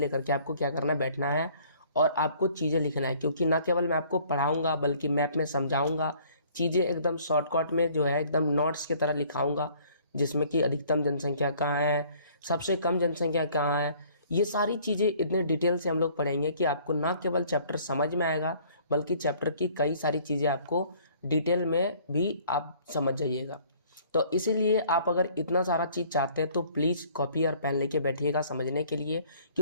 के आपको क्या करना, बैठना है और आपको चीज़ें लिखना है। क्योंकि ना केवल मैं आपको पढ़ाऊंगा बल्कि मैप में समझाऊंगा, चीज़ें एकदम शॉर्टकट में जो है एकदम नोट्स की तरह लिखाऊंगा, जिसमें कि अधिकतम जनसंख्या कहाँ है, सबसे कम जनसंख्या कहाँ है, ये सारी चीज़ें इतने डिटेल से हम लोग पढ़ेंगे कि आपको ना केवल चैप्टर समझ में आएगा बल्कि चैप्टर की कई सारी चीज़ें आपको डिटेल में भी आप समझ जाइएगा। तो इसीलिए आप अगर इतना सारा चीज़ चाहते हैं तो प्लीज़ कॉपी और पेन लेके बैठिएगा समझने के लिए,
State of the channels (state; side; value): inverted; both; correlation -0.57